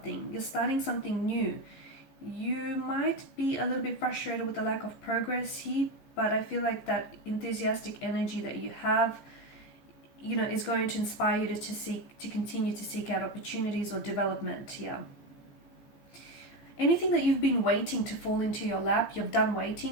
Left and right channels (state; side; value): late; right; 14 ms